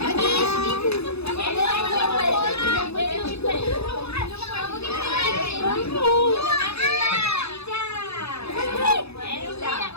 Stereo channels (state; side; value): late; right; 0.79 ms